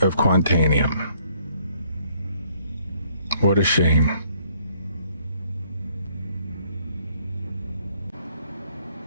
Quantanium. What a shame.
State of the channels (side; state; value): both; inverted; correlation -0.66